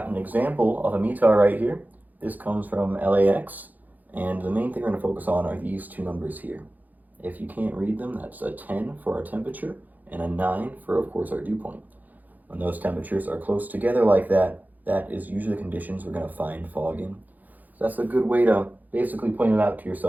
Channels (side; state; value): left; late; 0.082 ms